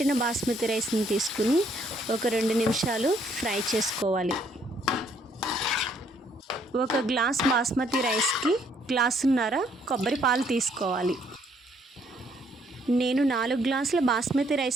బాస్మతి రైస్ని తీసుకుని ఒక 2 నిమిషాలు ఫ్రై చేసుకోవాలి. 1 గ్లాస్ బాస్మతి రైస్కి గ్లాసున్నర కొబ్బరి పాలు తీసుకోవాలి. నేను 4 గ్లాసుల బాస్మతి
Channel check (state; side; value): normal; both; correlation 0.67